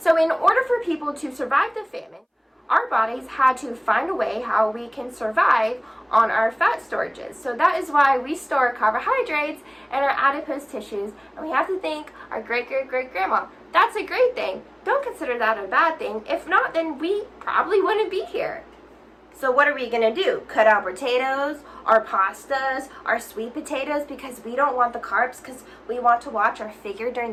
in order for people to survive the famine, our bodies had to find a way how we can survive on our fat storages. So that is why we store carbohydrates in our adipose tissues, and we have to thank our great grandma. That's a great thing. Don't consider that a bad thing. If not, then we probably wouldn't be here. So what are we going to do? Cut out potatoes, our pastas, our sweet potatoes because we don't want the carbs because we want to watch our figure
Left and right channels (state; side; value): identical; both; correlation 1.00